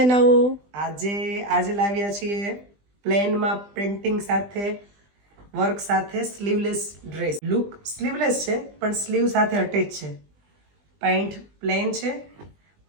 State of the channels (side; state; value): left; late; 20 ms